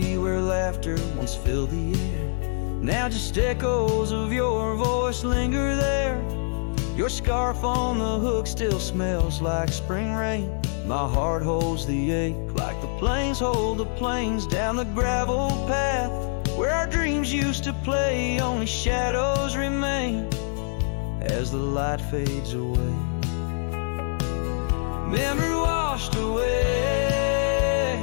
where laughter once filled the air. Now just echoes of your voice linger there. Your scarf on the hook still smells like spring rain. My heart holds the ache like the plains hold the plains down the gravel path where our dreams used to play. Only shadows remain as the light fades away. Memory washed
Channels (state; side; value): silent; right; 62 dB below the other